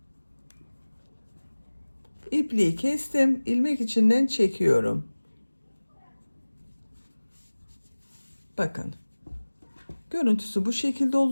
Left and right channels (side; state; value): both; inverted; correlation -1.00